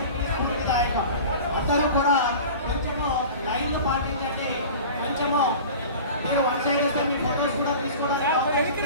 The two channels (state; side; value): inverted; both; correlation -0.38